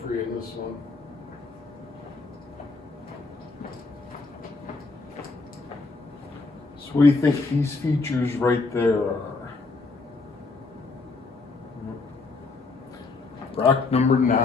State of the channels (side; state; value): right; quieter; 3.8 dB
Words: for you in this one. So what do you think these features right there are? Rock number